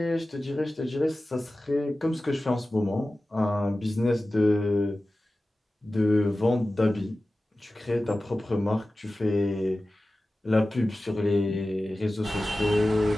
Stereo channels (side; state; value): both; normal; correlation 0.96